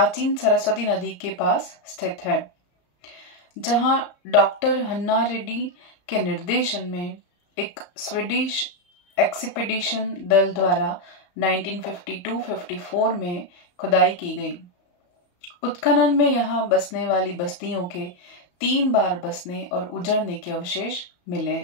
सरस्वती नदी के पास स्थित है, जहां डॉक्टर हन्ना रेड्डी के निर्देशन में एक स्वीडिश एक्सपीडिशन दल द्वारा 1952-54 में खुदाई की गई। उत्खनन में यहाँ बसने वाली बस्तियों के 3 बार बसने और उजड़ने के अवशेष मिले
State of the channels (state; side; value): late; right; 34 ms